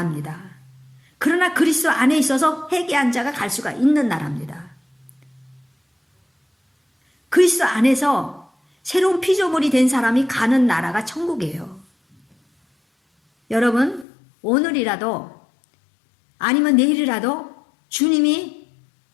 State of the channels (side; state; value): right; drops out; at 14.1 s